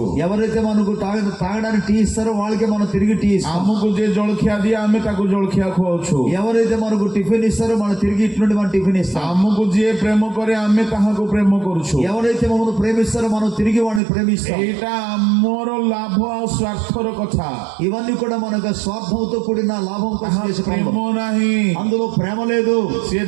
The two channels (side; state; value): left; drops out; at 14.0 s